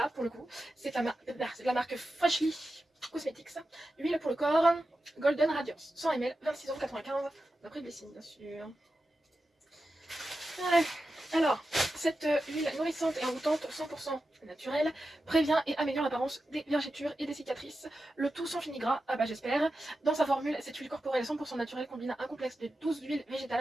pour le coup. C'est la marque Freshly Cosmetics. Huile pour le corps, Golden Radiance, 100 ml, 26,95€, d'après Blessing, bien sûr. Ouais. Alors, cette huile nourrissante et envoûtante 100% naturelle prévient et améliore l'apparence des vergetures et des cicatrices, le tout sans fini gras, ah bah j'espère. Dans sa formule, cette huile corporelle 100% naturelle combine un complexe de 12 huiles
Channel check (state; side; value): normal; both; correlation 0.91